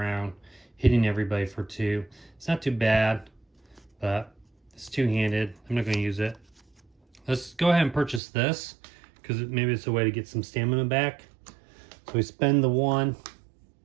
hitting everybody for 2. It's not too bad, but it's 2-handed. I'm not going to use it. Let's go ahead and purchase this, because maybe it's a way to get some stamina back. So we spend the 1.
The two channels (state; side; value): drops out; left; at 8.2 s